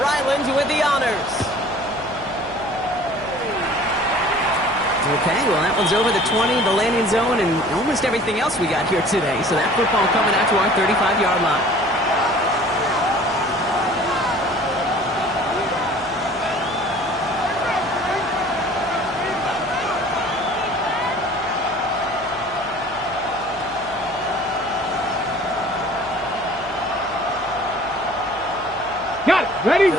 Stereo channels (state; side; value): noise; right; hum, 21 dB below the sound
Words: Ryland with the honors. Okay, well, that one's over the 20, the landing zone, and almost everything else we got here today. So that football coming out to our 35-yard line. Got it. Ready?